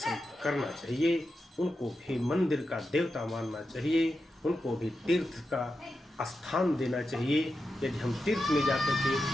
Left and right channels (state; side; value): normal; both; correlation 0.89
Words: करना चाहिए, उनको भी मंदिर का देवता मानना चाहिए, उनको भी तीर्थ का स्थान देना चाहिए। यदि हम तीर्थ में जाकर के